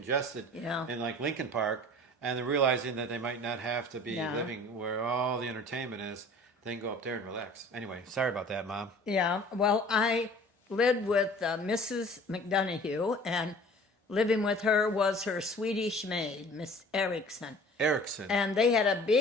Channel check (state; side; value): normal; both; correlation 0.47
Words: Yeah. in like Lincoln Park, and they're realizing that they might not have to be living where all the entertainment is. They can go up there and relax. Anyway, sorry about that, Mom. Yeah, well, I lived with Mrs. McDonough, and living with her was her Swedish maid, Miss Erickson. Erickson. And they had a